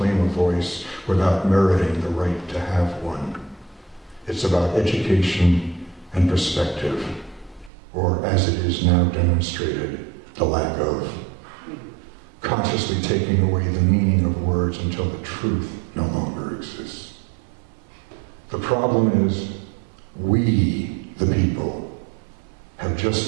a voice without meriting the right to have one. It's about education and perspective, or as it is now demonstrated, the lack of. Consciously taking away the meaning of words until the truth no longer exists. The problem is, we, the people, have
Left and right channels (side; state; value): left; drops out; at 7.7 s